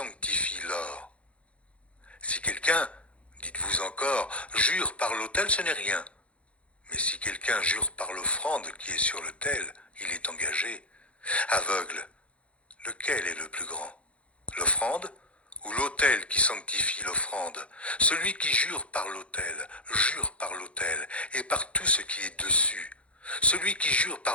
l'or? Si quelqu'un, dites-vous encore, jure par l'autel, ce n'est rien. Mais si quelqu'un jure par l'offrande qui est sur l'autel, il est engagé. Aveugle, lequel est le plus grand? L'offrande ou l'autel qui sanctifie l'offrande? Celui qui jure par l'autel et par tout ce qui est dessus. Celui qui jure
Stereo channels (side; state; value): right; late; 0.062 ms